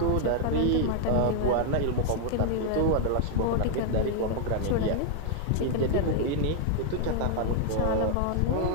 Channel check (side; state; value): both; different; correlation 0.00